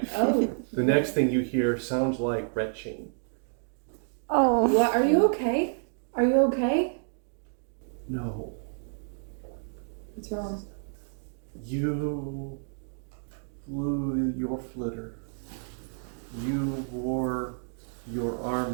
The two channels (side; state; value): left; silent; digital silence